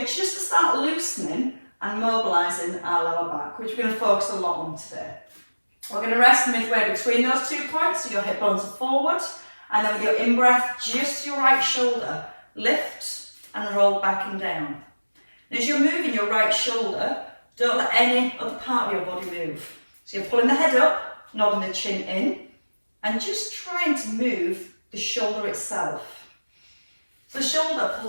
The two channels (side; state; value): both; inverted; correlation -1.00